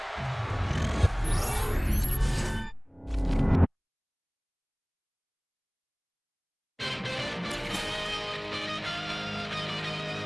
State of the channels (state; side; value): identical; both; correlation 1.00